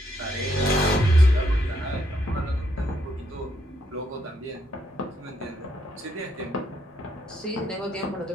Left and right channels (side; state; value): both; normal; correlation 0.75